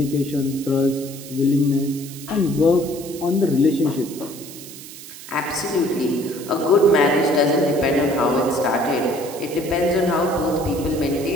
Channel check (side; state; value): right; noise; hiss, 15 dB below the sound